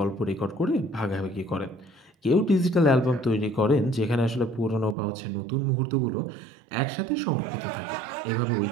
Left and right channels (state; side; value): drops out; left; at 5.0 s